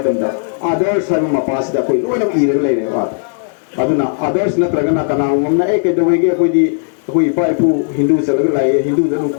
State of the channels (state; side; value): silent; right; digital silence